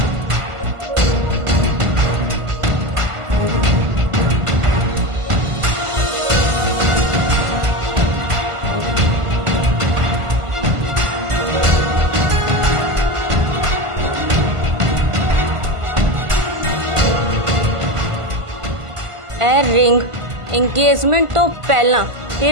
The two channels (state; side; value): late; left; 1.5 ms